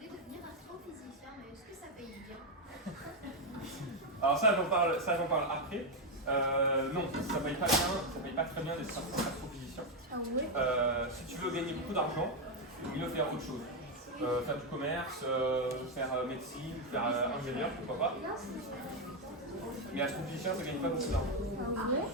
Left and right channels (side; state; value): both; normal; correlation 0.04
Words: devenir astrophysicien, mais est-ce que ça paye bien? Alors ça j'en parle après. Non, ça paye pas bien, ça paye pas très bien d'être astrophysicien. Ah ouais? Si tu veux gagner beaucoup d'argent, il faut faire autre chose. Faire du commerce, faire médecine, faire ingénieur, pourquoi pas. Mais astrophysicien, ça gagne pas beaucoup d'argent. Ah ouais?